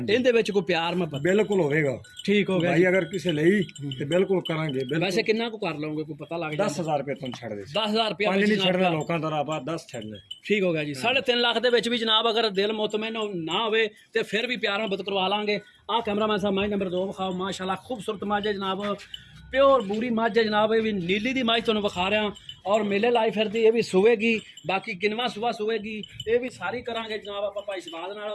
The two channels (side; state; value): both; identical; correlation 1.00